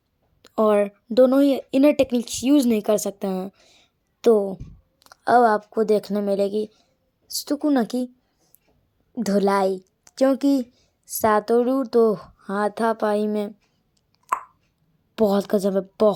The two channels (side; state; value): both; identical; correlation 1.00